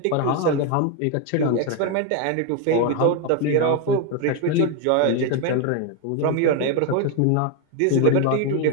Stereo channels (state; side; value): different; both; correlation 0.02